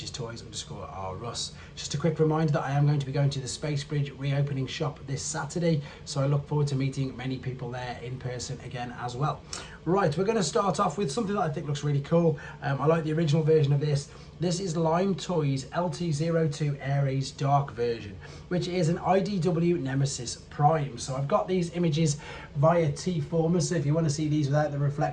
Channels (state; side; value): identical; both; correlation 1.00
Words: is Toys_R_Us. Just a quick reminder that I am going to be going to the Space Bridge reopening shop this Saturday, so I look forward to meeting many people there in person again as well. Right, we're going to start off with something that I think looks really cool. I like the original version of this. This is Lime Toys LT02 Ares Dark version, which is an IDW Nemesis Prime. So I've got these images via tfcon, so if you want to see these without the